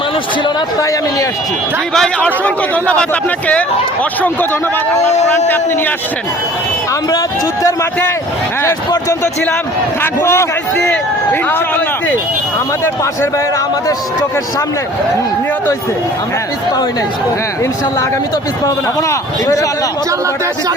মানুষ ছিল না, তাই আমি নিয়ে আসছি। জি ভাই, অসংখ্য ধন্যবাদ আপনাকে, অসংখ্য ধন্যবাদ। আমার কোরআনটি আপনি নিয়ে আসছেন। আমরা যুদ্ধের মাঠে শেষ পর্যন্ত ছিলাম, থাকবো গুলি খাইছি, ইনশাআল্লাহ। আহত হইছি। আমাদের পাশের ভাইয়েরা আমাদের চোখের সামনে নিহত হয়েছে, আমরা পিছপা হই নাই। ইনশাআল্লাহ আগামী তো পিছপা হবে না। হবো না, ইনশাআল্লাহ।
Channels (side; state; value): both; normal; correlation 0.49